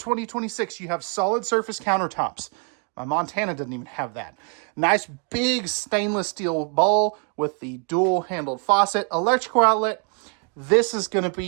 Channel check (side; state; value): left; quieter; 38.9 dB